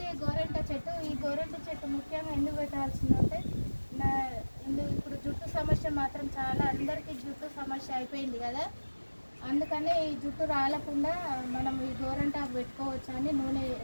గోరెంట చెట్టు. ఈ గోరెంట చెట్టు ముఖ్యంగా ఎందుకు పెట్టాల్సిందంటే ఇప్పుడు జుట్టు సమస్య మాత్రం చాలా అందరికీ జుట్టు సమస్య అయిపోయింది కదా, అందుకని ఈ జుట్టు రాలకుండా మనం ఈ గోరెంటాకు పెట్టుకోవచ్చు అని నూనె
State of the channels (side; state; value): both; inverted; correlation -1.00